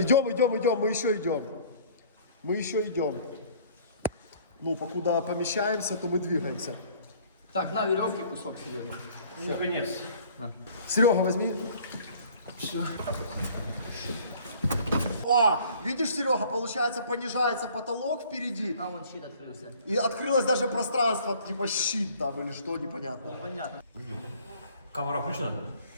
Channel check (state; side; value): inverted; both; correlation -0.53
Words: мы еще идем. Мы еще идем. Ну, покуда помещаемся, то мы двигаемся. Так, на веревке кусок Серега. Ну, конець. Серега, возьми. О, видишь, Серега, получается, понижается потолок впереди. А вон щит открылся. И открылось даже пространство, типа щит там или что, непонятно. Понятно. Камера включена?